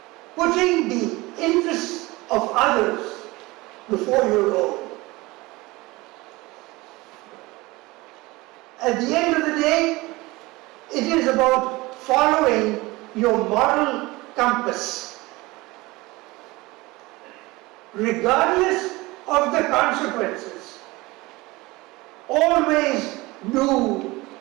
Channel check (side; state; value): left; quieter; 21.6 dB